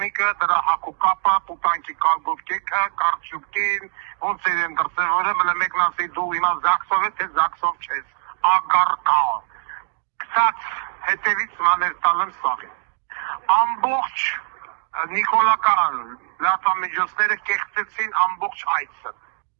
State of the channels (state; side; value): silent; left; digital silence